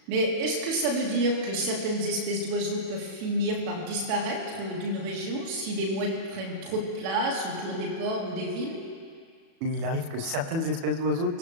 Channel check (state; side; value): late; left; 37 ms